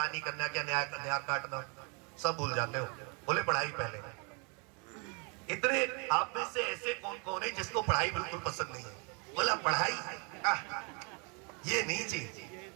करना, क्या न्याय काटना, सब भूल जाते हो। बोले पढ़ाई पहले। इतने आप में से ऐसे कौन कौन है जिसको पढ़ाई बिल्कुल पसंद नहीं है? बोला पढ़ाई ये नहीं चाहिए,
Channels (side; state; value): left; quieter; 33.7 dB